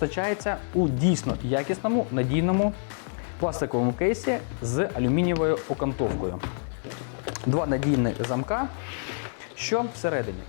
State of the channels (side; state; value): right; silent; digital silence